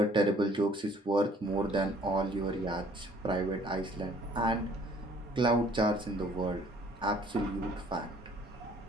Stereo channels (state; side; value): normal; both; correlation 0.57